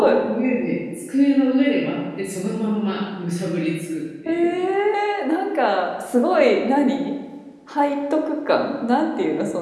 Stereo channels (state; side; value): identical; both; correlation 1.00